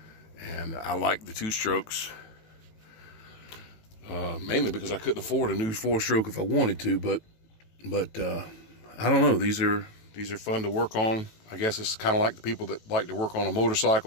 And I like the two strokes. Mainly because I couldn't afford a new 4-stroke if I wanted to, but I don't know. These are fun to work on. I guess it's kind of like the people that like to work on a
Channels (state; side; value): late; right; 18 ms